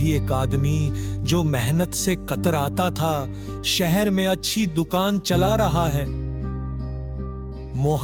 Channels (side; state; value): both; identical; correlation 1.00